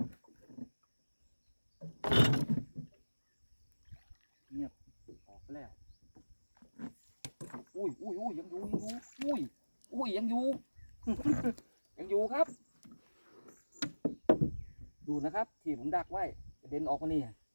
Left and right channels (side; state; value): both; inverted; correlation -1.00